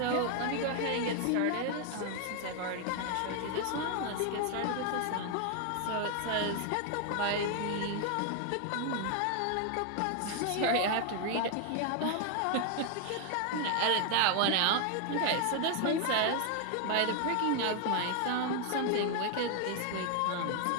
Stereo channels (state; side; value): different; both; correlation 0.00